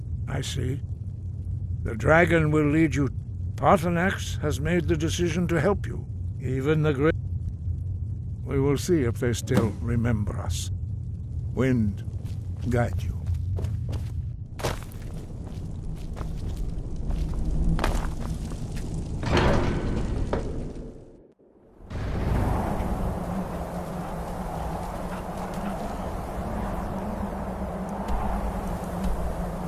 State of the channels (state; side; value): identical; both; correlation 1.00